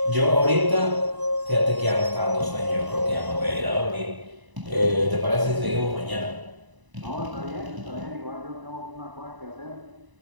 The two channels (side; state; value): left; late; 1.0 ms